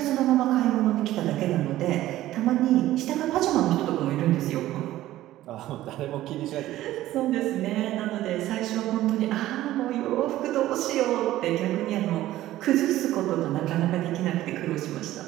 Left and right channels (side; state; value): left; quieter; 14.8 dB